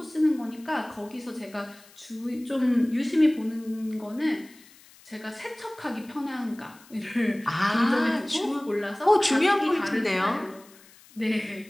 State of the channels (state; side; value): noise; left; hiss, 25 dB below the sound